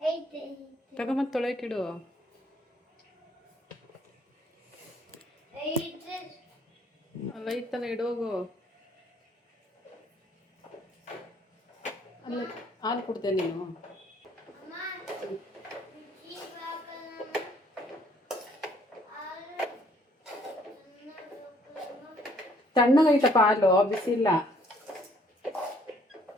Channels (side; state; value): both; normal; correlation 0.63